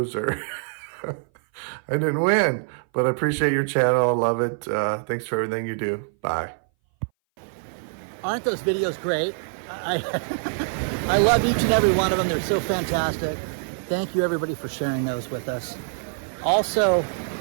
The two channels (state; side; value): silent; left; 59 dB below the other